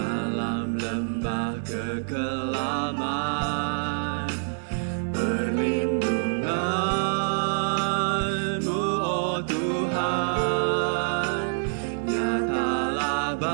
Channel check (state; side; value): silent; left; digital silence